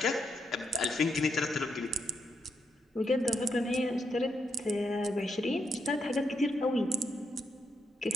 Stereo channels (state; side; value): normal; both; correlation 0.80